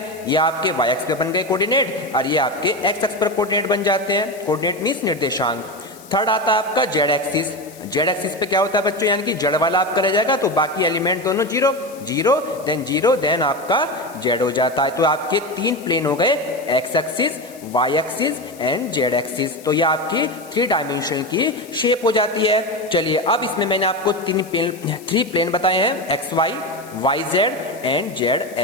ये आपके वाई एक्स पे बन गए कोऑर्डिनेट और ये आपके एक्स एक्स पर कोऑर्डिनेट बन जाते हैं। कोऑर्डिनेट मींस निर्देशांक। थर्ड आता है आपका जेड एक्सिस। जेड एक्सिस पे क्या होता है बच्चों, यानी कि जेड वाला आपका रह जाएगा, तो बाकी एलिमेंट दोनों 0 0 देन आपका जेड हो जाता है। तो आपके 3 प्लेन हो गए, X axis Y axis and Z axis. तो ये आपकी 3 डायमेंशन की शेप हो जाती है। चलिए अब इसमें मैंने आपको 3 प्लेन बताए हैं, X Y Y Z and Z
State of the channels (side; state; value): left; noise; hiss, 21 dB below the sound